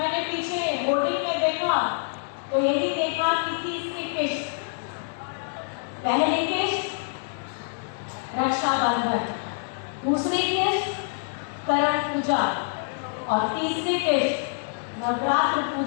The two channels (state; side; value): silent; right; digital silence